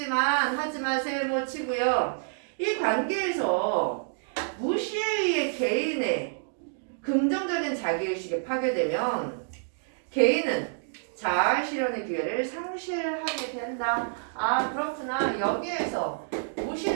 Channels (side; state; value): left; silent; digital silence